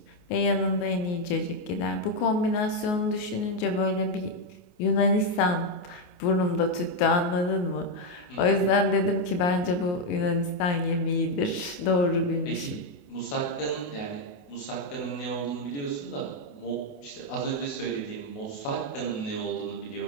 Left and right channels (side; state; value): right; late; 28 ms